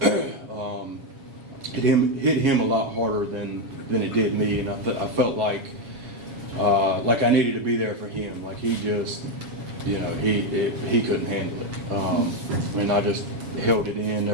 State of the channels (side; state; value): left; late; 7.3 ms